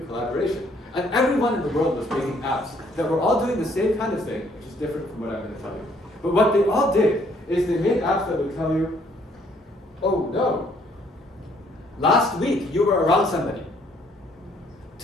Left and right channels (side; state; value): both; normal; correlation 0.65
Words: collaboration. And everyone in the world was making apps that were all doing the same kind of thing, which is different from what I'm going to tell you. But what they all did is they made apps that would tell you, oh no, last week you were around somebody.